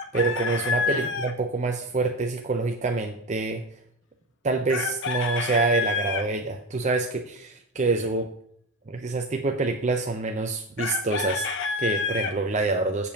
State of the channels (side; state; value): both; normal; correlation 0.22